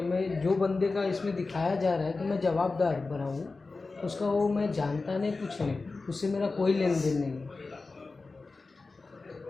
मैं जो बंदे का इसमें दिखाया जा रहा है कि मैं जवाबदार बना हूँ, उसका वो मैं जानता नहीं, कुछ नहीं, उससे मेरा कोई लेन देन नहीं है।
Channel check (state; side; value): quieter; right; 3.8 dB